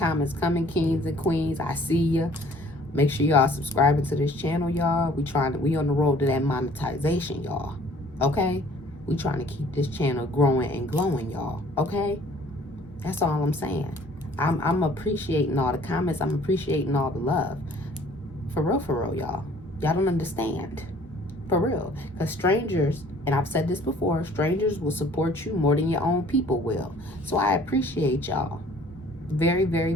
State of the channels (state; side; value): normal; both; correlation 0.55